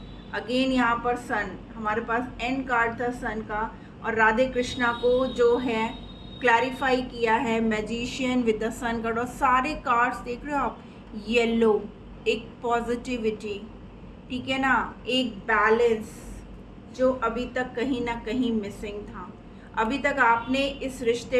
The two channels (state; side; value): identical; both; correlation 1.00